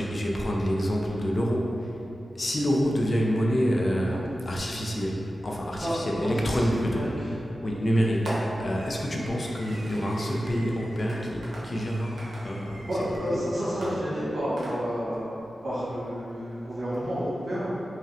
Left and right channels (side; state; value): both; normal; correlation 0.93